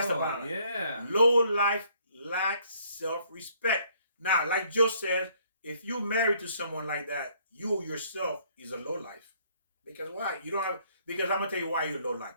about it. Yeah. Low life lacks self-respect. Now, like Joe says, if you married to someone like that, you yourself is a low life. Because why? You don't have. Because I'm gonna tell you why you're low life.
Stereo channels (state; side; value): inverted; both; correlation -0.64